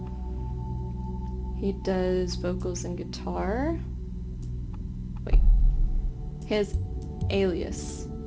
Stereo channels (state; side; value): identical; both; correlation 1.00